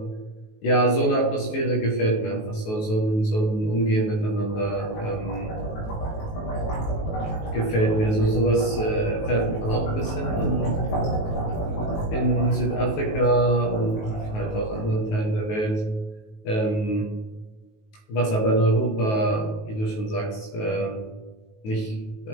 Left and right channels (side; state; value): right; late; 19 ms